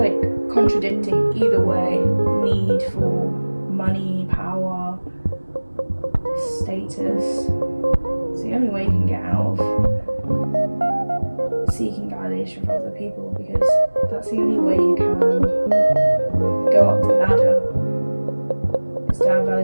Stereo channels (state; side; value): inverted; both; correlation -1.00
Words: contradicting either way. Need for money, power, status. It's the only way you can get out of seeking validation from other people, because that's the only way you can go up the ladder, is to have